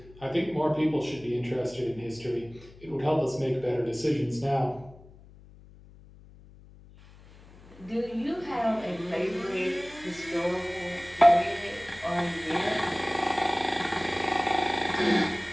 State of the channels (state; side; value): noise; left; hum, 22 dB below the sound